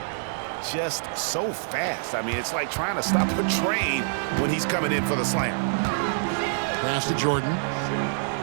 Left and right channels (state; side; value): silent; left; 60 dB below the other